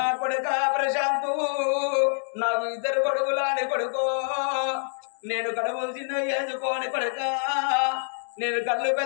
కొడుక ప్రశాంతు నాకు 2 కొడుకులాని కొడుకో నేను కడుపులు చిన్న వేసుకోని కొడుక నేను కళ్ళు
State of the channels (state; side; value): silent; right; 58 dB below the other